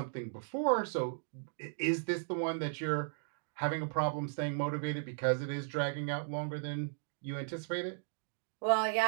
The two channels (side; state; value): left; silent; digital silence